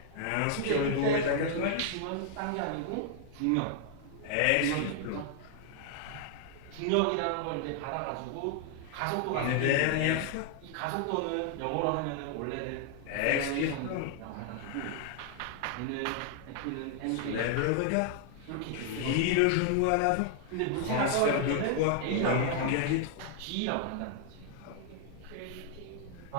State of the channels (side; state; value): both; different; correlation 0.00